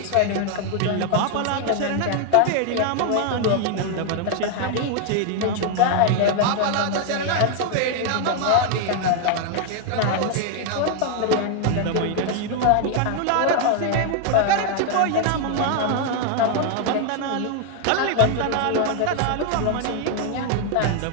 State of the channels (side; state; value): both; different; correlation 0.00